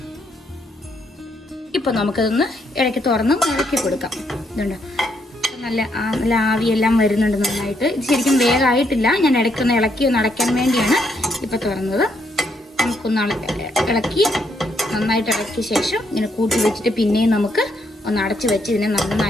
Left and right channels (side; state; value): both; normal; correlation 0.74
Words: ഇപ്പോൾ നമുക്കതൊന്ന് ഇടയ്ക്ക് തുറന്ന് ഇളക്കി കൊടുക്കാം. ഇതുണ്ട്, നല്ല ആവിയെല്ലാം വരുന്നുണ്ട് നന്നായിട്ട്. ഇത് ശരിക്കും വേഗമായിട്ടില്ല, ഞാൻ ഇടയ്ക്കൊന്ന് ഇളക്കി ഒന്ന് അടയ്ക്കാൻ വേണ്ടിയാണ് ഇപ്പോൾ തുറന്നത്. നമുക്കൊന്ന് ഇളക്കി നന്നായിട്ട് ഇളക്കിയ ശേഷം ഇങ്ങനെ കൂട്ടി വെച്ചിട്ട് പിന്നെയും നമുക്ക് ഒന്ന് അടച്ച് വെച്ച് ഇതിനെ